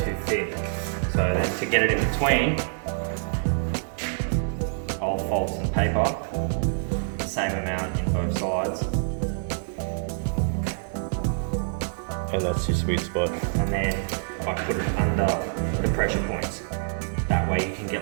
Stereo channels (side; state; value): left; silent; digital silence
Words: thin. So then to get it in between, I'll fold some paper, the same amount in both sides. And that's your sweet spot. And then I put it under the pressure points. That way you can get